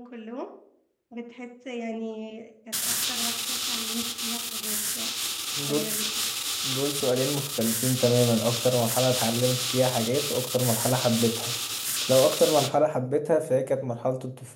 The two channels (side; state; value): both; identical; correlation 1.00